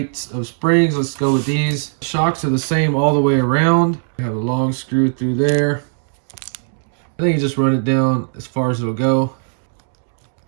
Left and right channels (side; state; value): left; silent; digital silence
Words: of springs. Let's go with these. Shocks are the same all the way around. You have a long screw through there. I think you just run it down as far as it'll go.